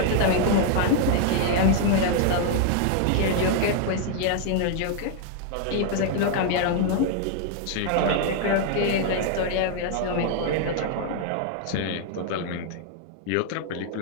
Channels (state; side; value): different; both; correlation 0.00